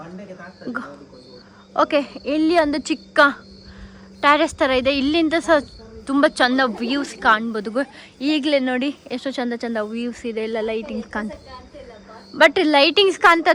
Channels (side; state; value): both; identical; correlation 1.00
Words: ಓಕೆ, ಇಲ್ಲಿ ಒಂದು ಚಿಕ್ಕ ಟ್ಯಾರೆಸ್ ಥರ ಇದೆ. ಇಲ್ಲಿಂದ ಸಹ ತುಂಬ ಚಂದ ವ್ಯೂಸ್ ಕಾಣ್ಬೋದು. ಈಗಲೇ ನೋಡಿ ಎಷ್ಟು ಚಂದ ವ್ಯೂಸ್ ಇದೆ. ಎಲ್ಲ ಲೈಟಿಂಗ್ಸ್ ಬಟ್ ಲೈಟಿಂಗ್ಸ್